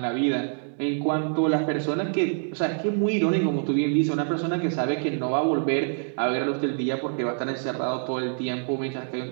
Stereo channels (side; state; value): left; silent; 61 dB below the other